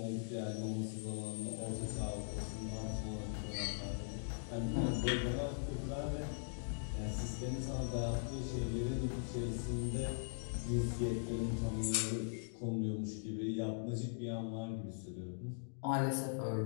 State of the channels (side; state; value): right; silent; digital silence